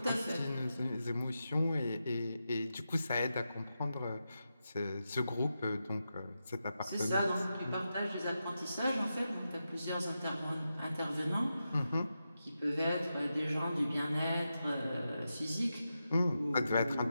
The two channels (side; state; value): both; inverted; correlation -0.89